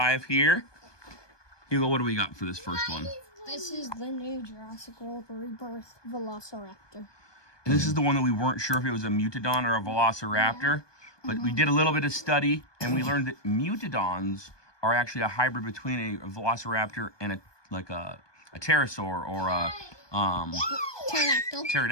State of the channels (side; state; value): right; late; 1.2 ms